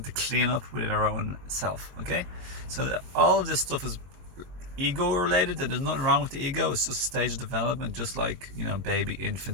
to clean up within our own self. Okay. So all of this stuff is ego related, and there's nothing wrong with the ego. It's just a stage of development, just like, you know, baby,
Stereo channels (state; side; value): late; left; 23 ms